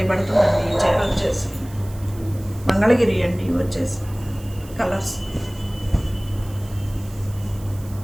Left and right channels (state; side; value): noise; right; hiss, 21 dB below the sound